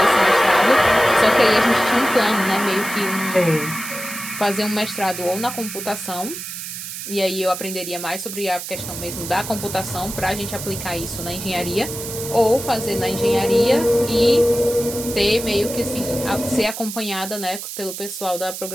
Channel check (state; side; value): noise; right; hiss, 8 dB below the sound